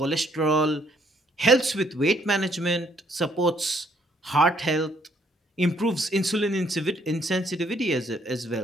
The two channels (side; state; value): both; normal; correlation 0.67